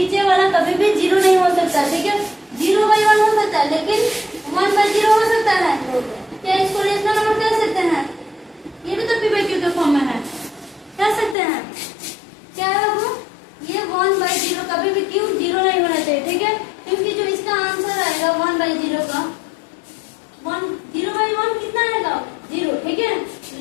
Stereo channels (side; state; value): right; drops out; at 11.4 s